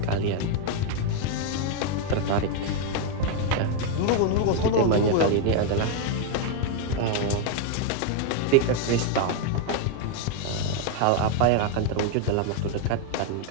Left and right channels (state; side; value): different; both; correlation 0.01